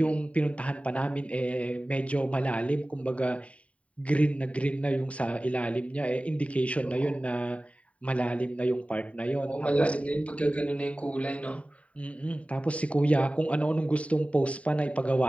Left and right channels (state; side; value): late; right; 0.065 ms